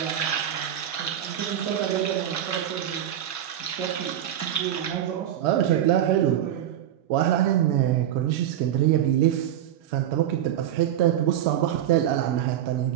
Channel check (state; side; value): quieter; left; 11.2 dB